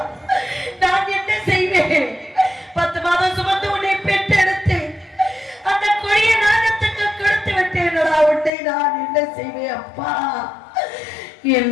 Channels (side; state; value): right; drops out; at 8.5 s